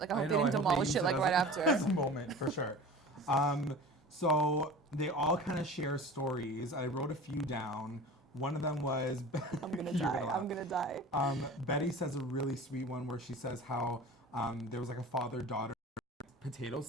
Like, I hope they didn't demolish it like right after. As a moment, for sure. So they all kind of share stories. I wrote a few down. One of them was... I'm gonna die. I'm gonna die. Betty says a really sweet one where she says how there was like a father-daughter potato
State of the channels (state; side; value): normal; both; correlation 0.37